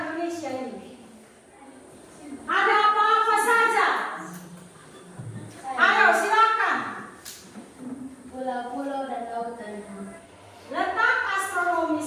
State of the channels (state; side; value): identical; both; correlation 1.00